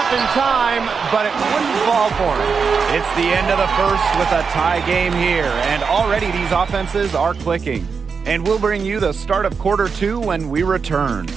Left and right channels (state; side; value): quieter; left; 5.6 dB